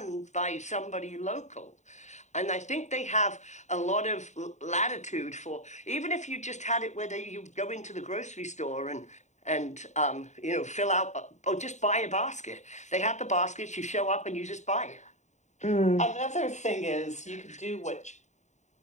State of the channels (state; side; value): late; right; 0.34 ms